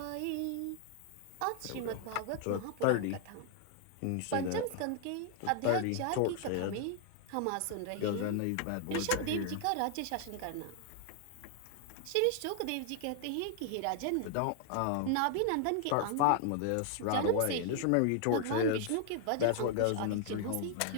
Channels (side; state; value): both; different; correlation 0.00